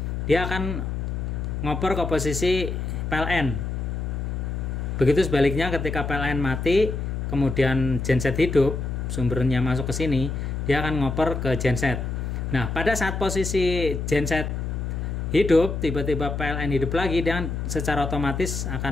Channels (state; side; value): noise; left; hum, 3 dB below the sound